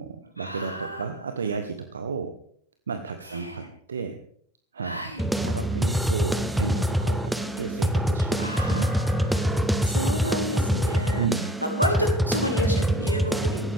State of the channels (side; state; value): both; normal; correlation 0.49